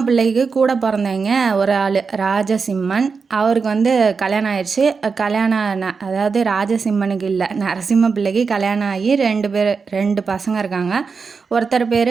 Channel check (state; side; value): quieter; left; 5.1 dB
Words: பிள்ளைக்கு கூட பிறந்தவங்க ஒரு ஆள் ராஜசிம்மன். அவருக்கு வந்து கல்யாணம் ஆயிடுச்சு. அதாவது ராஜசிம்மனுக்கு இல்லை, நரசிம்ம பிள்ளைக்கு கல்யாணம் ஆகி 2 பசங்க இருக்காங்க. ஒருத்தர் பேர்